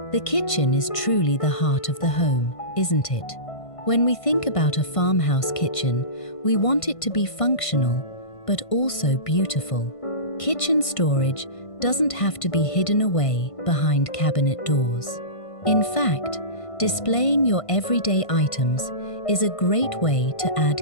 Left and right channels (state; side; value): late; right; 1.5 ms